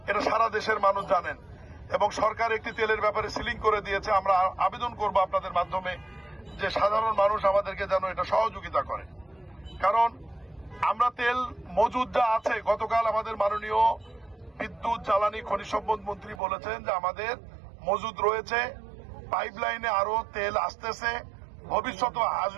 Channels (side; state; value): left; drops out; at 16.4 s